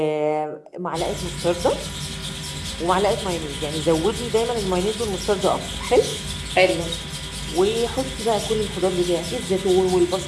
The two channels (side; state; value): both; identical; correlation 1.00